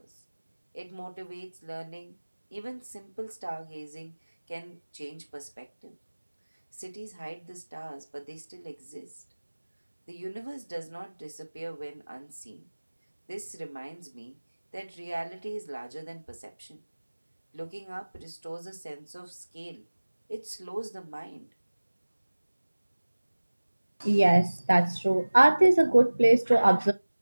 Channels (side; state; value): both; inverted; correlation -1.00